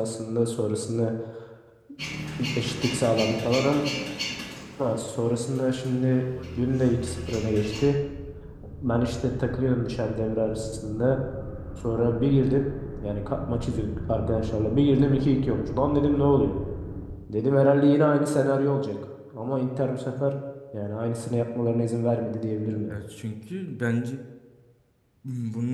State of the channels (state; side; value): identical; both; correlation 1.00